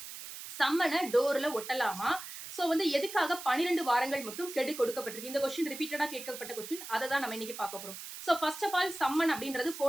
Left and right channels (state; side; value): noise; right; hiss, 11 dB below the sound